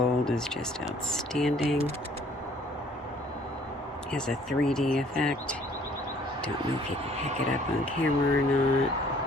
is just outstanding. It has a 3D effect. Don't know if you can pick it up on camera or not.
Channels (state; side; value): normal; both; correlation 0.58